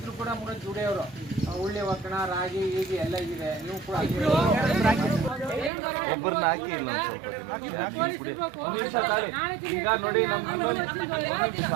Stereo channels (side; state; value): left; drops out; at 5.7 s